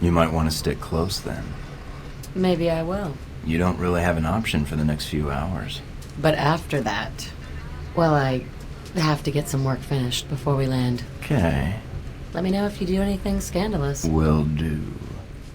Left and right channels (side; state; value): both; identical; correlation 1.00